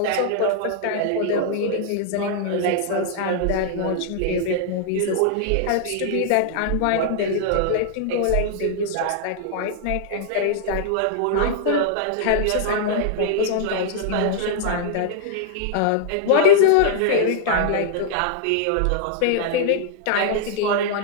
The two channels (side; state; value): both; different; correlation -0.01